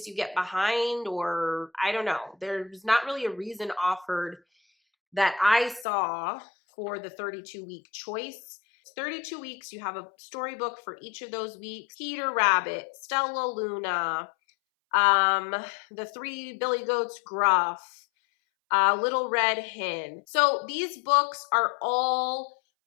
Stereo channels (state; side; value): drops out; right; at 5.9 s